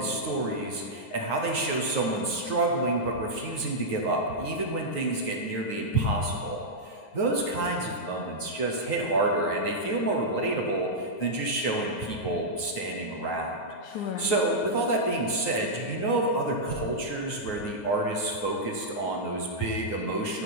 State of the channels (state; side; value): late; right; 9.5 ms